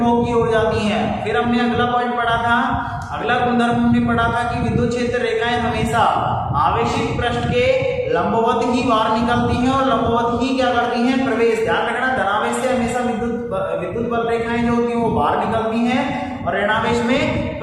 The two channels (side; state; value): both; identical; correlation 1.00